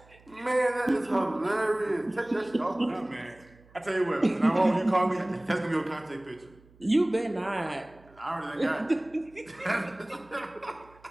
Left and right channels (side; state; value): right; noise; hum, 27 dB below the sound